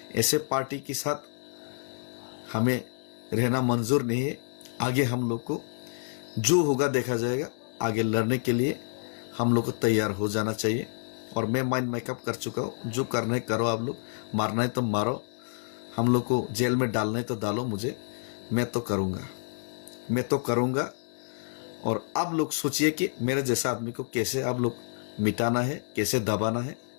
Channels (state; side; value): silent; right; digital silence